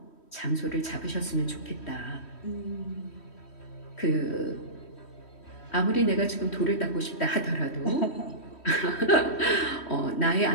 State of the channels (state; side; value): late; right; 3.1 ms